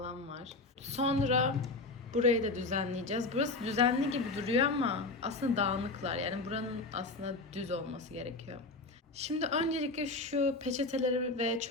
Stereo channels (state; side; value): quieter; right; 3.3 dB